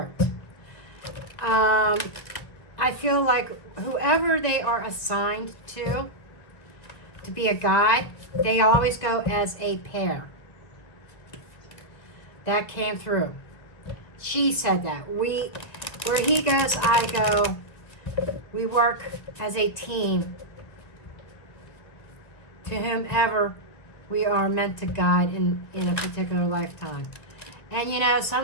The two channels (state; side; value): late; right; 1.5 ms